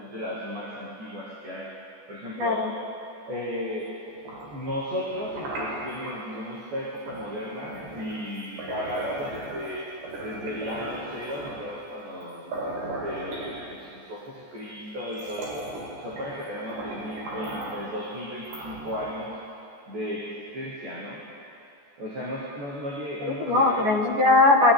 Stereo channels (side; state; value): left; late; 14 ms